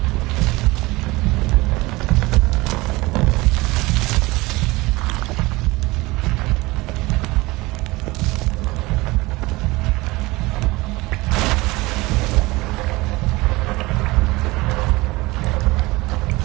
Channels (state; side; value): quieter; left; 21.7 dB